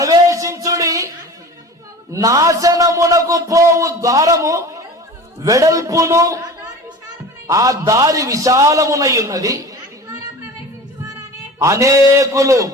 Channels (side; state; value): both; normal; correlation 0.37